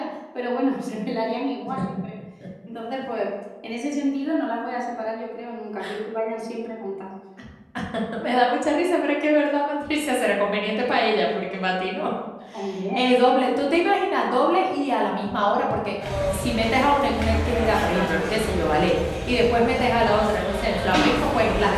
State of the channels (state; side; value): identical; both; correlation 1.00